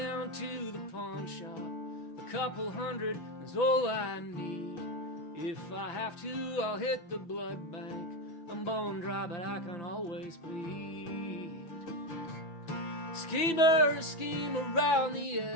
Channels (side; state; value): right; late; 5.8 ms